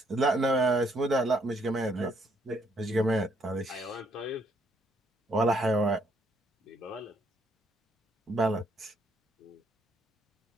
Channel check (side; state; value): both; normal; correlation 0.70